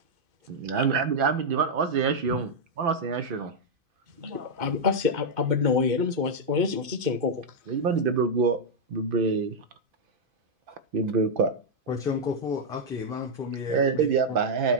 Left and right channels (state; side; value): late; left; 2.5 ms